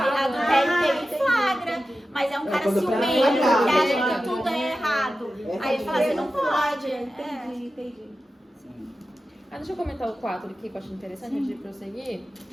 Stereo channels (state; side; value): normal; both; correlation 0.93